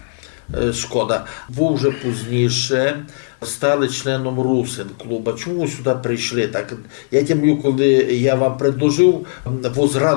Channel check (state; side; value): silent; right; 63 dB below the other